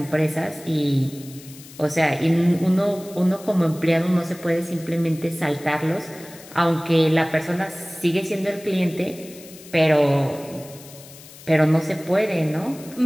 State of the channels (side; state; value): left; noise; hiss, 19 dB below the sound